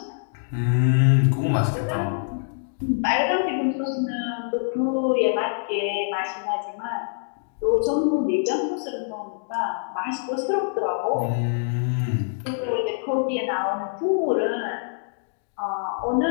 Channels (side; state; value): right; silent; digital silence